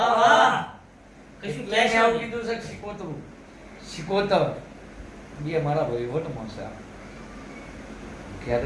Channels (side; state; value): both; identical; correlation 1.00